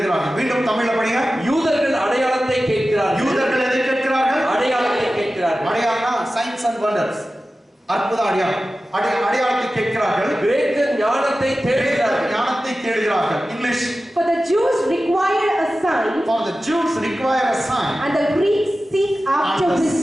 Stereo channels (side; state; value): both; normal; correlation 0.95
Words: மீண்டும் தமிழ்ல படிங்க. யூதர்கள் அடையாளத்தை கேட்கிறார்கள். யூதர்கள் எதை கேட்கிறார்கள்? அடையாளத்தை கேட்கிறார்கள். அடையாளம்னா சைன்ஸ் அண்ட் வண்டர்ஸ், அற்புத அடையாளம். அடையாளத்தை கேட்கிறார்கள். கிரேக்கர் ஞானத்தை தேடுகிறார்கள். ஞானத்தை தேடுகிறார்கள். English. For the Jews require a sign. For the Jews require a sign. And the Greeks seek after